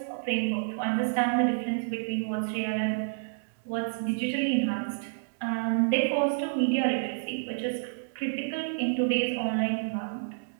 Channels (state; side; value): silent; left; digital silence